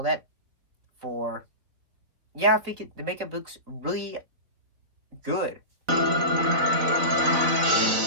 that, I think the makeup looks really good.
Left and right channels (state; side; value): late; left; 4.0 ms